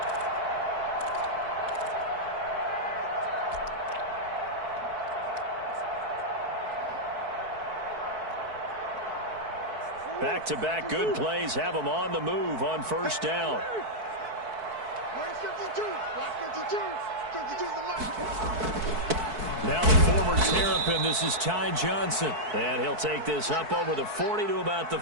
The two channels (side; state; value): left; late; 4.6 ms